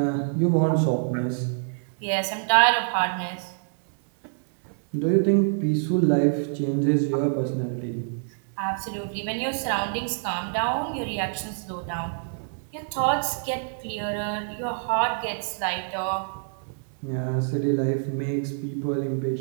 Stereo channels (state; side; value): silent; left; 61 dB below the other